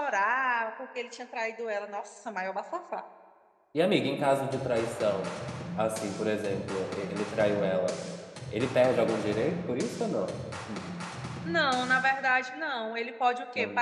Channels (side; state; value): both; identical; correlation 1.00